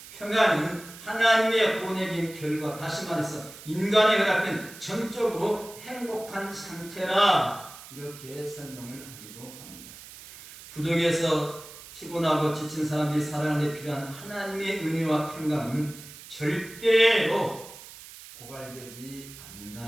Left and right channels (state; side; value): noise; right; hiss, 16 dB below the sound